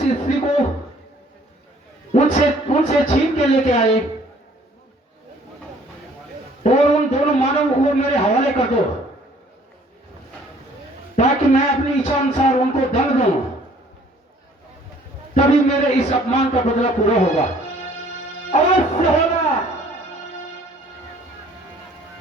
स्त्री को उनसे छीन के लेके आए और उन दोनों मानवों को मेरे हवाले कर दो, ताकि मैं अपनी इच्छा अनुसार उनको दंड दूं। तभी मेरे इस अपमान का बदला पूरा होगा। अवश्य होगा।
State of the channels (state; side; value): normal; both; correlation 0.57